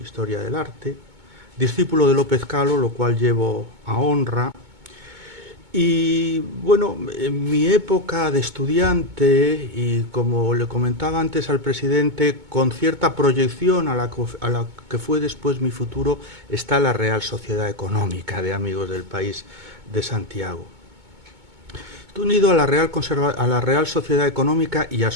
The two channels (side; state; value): left; late; 2.2 ms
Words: del Arte, discípulo de López Calo, lo cual llevo a honra. Y bueno, en mi época de estudiante, y como le comentaba antes al presidente, con cierta proyección a la que fue después mi futuro, está la Real Sociedad Económica de Amigos del País de Santiago. Estoy unido a la Real Sociedad Económica y a